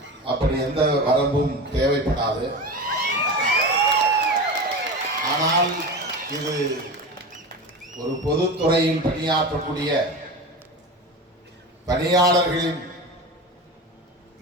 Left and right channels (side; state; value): both; normal; correlation 0.27